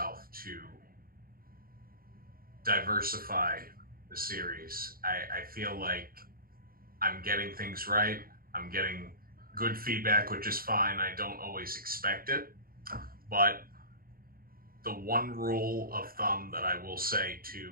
to diversify the series, I feel like I'm getting things right. I'm getting good feedback, which is fine. I don't always expect it, but the one rule of thumb that I will say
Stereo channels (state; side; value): late; left; 0.42 ms